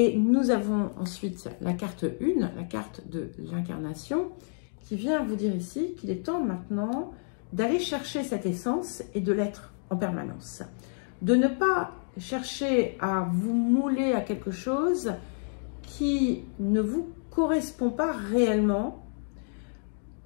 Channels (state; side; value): silent; right; digital silence